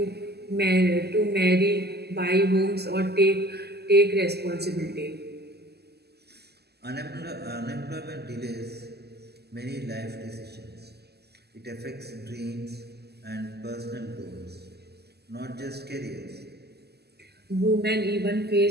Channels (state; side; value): late; left; 0.47 ms